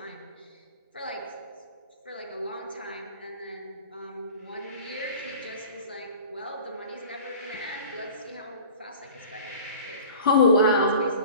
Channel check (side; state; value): both; inverted; correlation -0.41